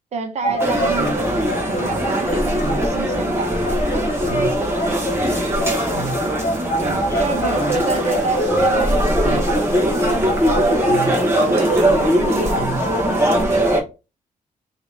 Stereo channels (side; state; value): both; normal; correlation 0.60